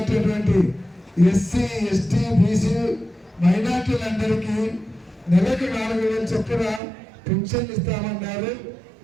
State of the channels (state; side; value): drops out; left; at 6.8 s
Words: ఎస్సీ ఎస్టీ బీసీ మైనార్టీలందరికీ నెలకు 4,000 చొప్పున పెన్షన్ ఇస్తామన్నారు.